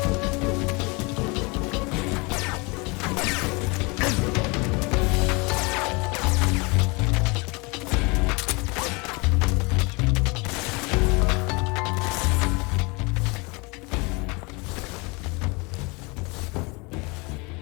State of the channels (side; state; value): right; quieter; 27.9 dB